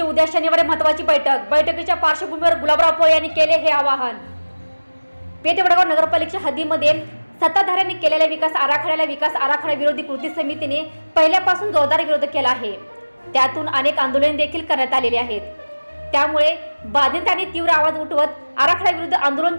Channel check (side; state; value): both; inverted; correlation -1.00